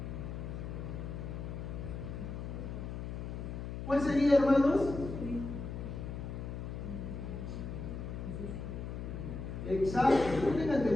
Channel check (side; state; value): left; noise; hum, 6 dB below the sound